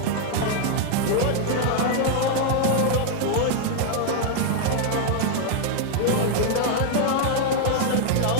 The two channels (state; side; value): different; both; correlation 0.00